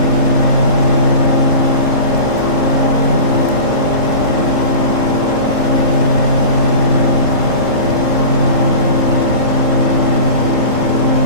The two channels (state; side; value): late; left; 3.8 ms